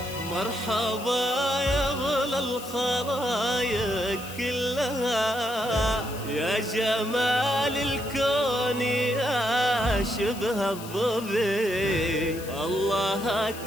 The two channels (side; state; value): left; noise; hiss, 15 dB below the sound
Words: مرحبا يا غلا الخلايق كلها، يا جمال الكون يا شبه الظبي، الله